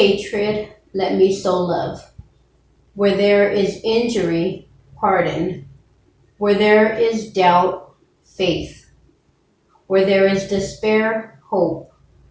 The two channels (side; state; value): both; identical; correlation 1.00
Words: let me sow love. Where there is injury, pardon. Where there is doubt, faith. Where there is despair, hope.